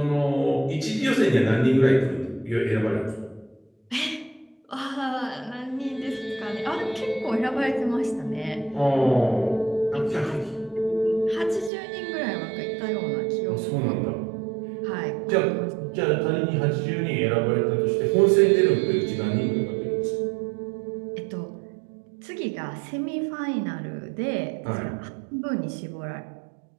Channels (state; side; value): drops out; left; at 11.7 s